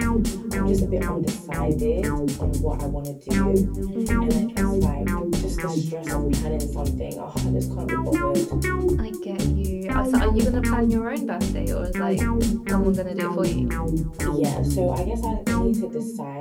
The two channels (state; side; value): identical; both; correlation 1.00